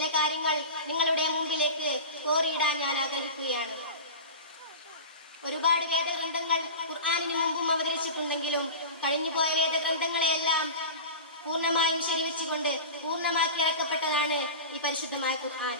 കാര്യങ്ങൾ നിങ്ങളുടെ മുമ്പിലേക്ക് കോറിയിടാൻ ഞാൻ ആഗ്രഹിക്കുകയാണ്. ഒരുപാട് വേദഗ്രന്ഥങ്ങൾ ഖുർആനിന് മുമ്പും അവതരിച്ചിട്ടുണ്ടെങ്കിലും കഴിഞ്ഞുപോയ വേദഗ്രന്ഥങ്ങളെയെല്ലാം പൂർണ്ണമായും ശരിവെച്ചുകൊണ്ട് പൂർണ്ണമാക്കി ഇറക്കപ്പെട്ടതാണ് ഈ പരിശുദ്ധമായ ഖുർആൻ.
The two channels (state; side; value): inverted; both; correlation -0.30